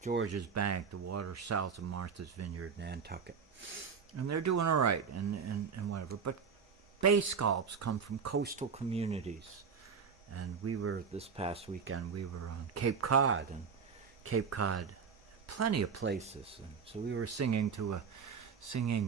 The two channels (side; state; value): left; quieter; 6.2 dB